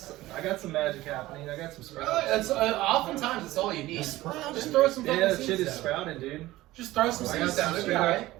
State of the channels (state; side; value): quieter; left; 17.2 dB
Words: I got some magic happening. I got some sprouts. That's oftentimes it's all you need. Just throw some fucking Yeah, that seeds shit is down. sprouting, dude. Just throw some I got seeds down. some It'll be alright.